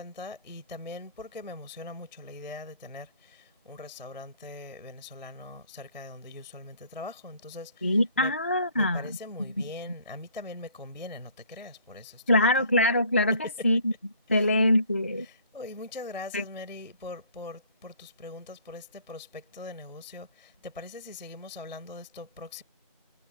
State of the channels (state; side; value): inverted; both; correlation -0.57